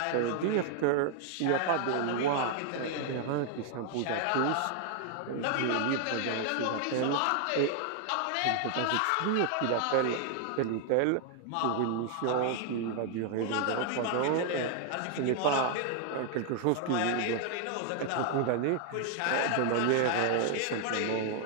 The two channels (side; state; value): both; different; correlation 0.00